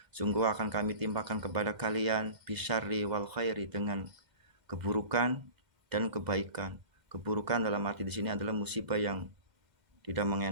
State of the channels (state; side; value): late; left; 2.0 ms